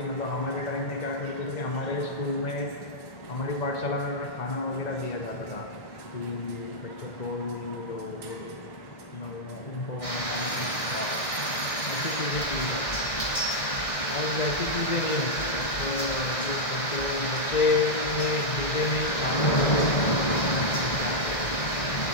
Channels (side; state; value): right; late; 1.6 ms